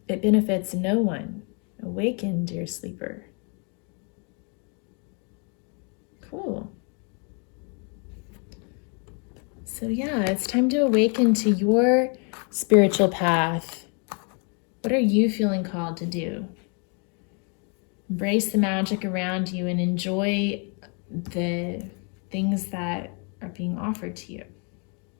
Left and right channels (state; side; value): quieter; right; 37.1 dB